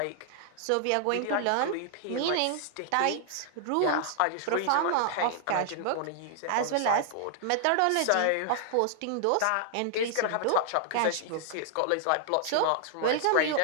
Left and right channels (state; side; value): different; both; correlation 0.00